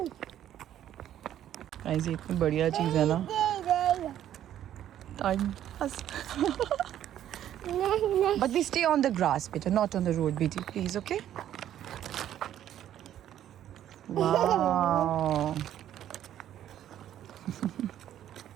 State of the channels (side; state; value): left; quieter; 11.3 dB